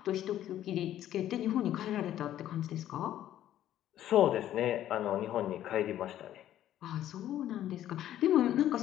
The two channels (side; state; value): right; quieter; 12.1 dB